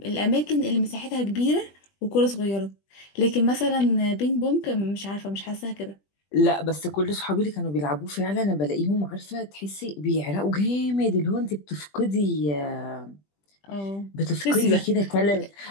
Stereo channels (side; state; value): right; late; 20 ms